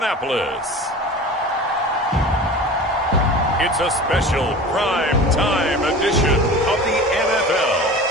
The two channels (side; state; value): both; normal; correlation 0.37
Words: it's a special prime time edition of the NFL